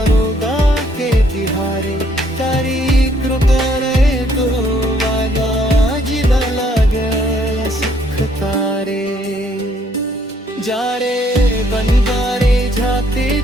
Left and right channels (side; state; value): both; normal; correlation 0.67